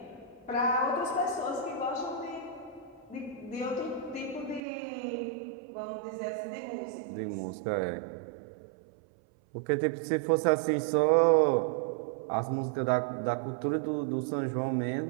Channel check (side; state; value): left; drops out; at 4.6 s